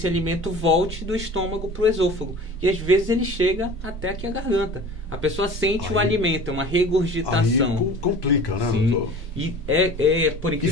alimento volte do estômago para o esôfago. E às vezes ele chega até aqui a garganta. A pessoa sente o alimento, é uma regurgitação. Aí complica, né, Sim. doutor? E por E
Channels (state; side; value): normal; both; correlation 0.41